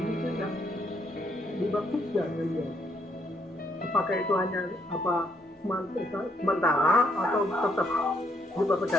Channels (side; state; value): both; normal; correlation 0.72